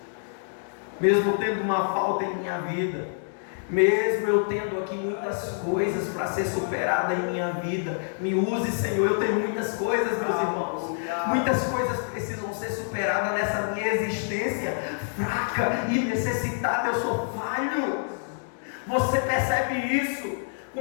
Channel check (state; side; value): silent; right; digital silence